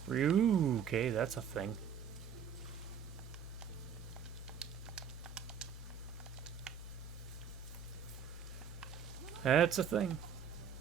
Ooh, okay, that's a thing. That's a thing.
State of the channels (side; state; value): left; quieter; 7.8 dB